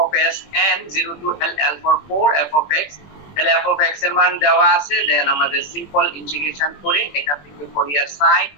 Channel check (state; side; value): late; right; 21 ms